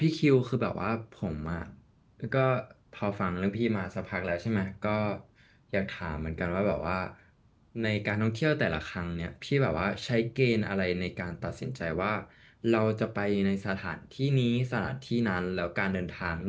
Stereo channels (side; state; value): both; identical; correlation 1.00